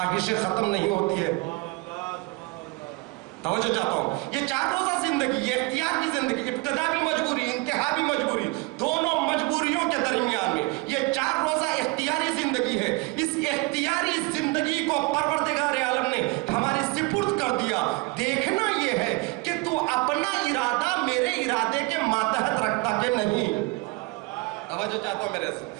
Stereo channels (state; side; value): quieter; left; 25.1 dB